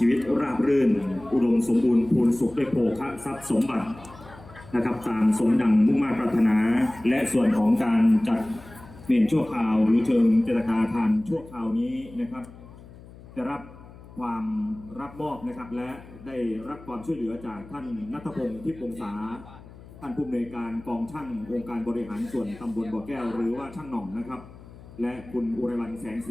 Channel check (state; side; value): noise; left; hum, 19 dB below the sound